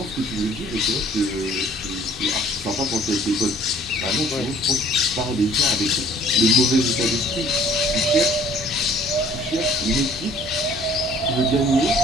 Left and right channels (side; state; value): both; normal; correlation 0.55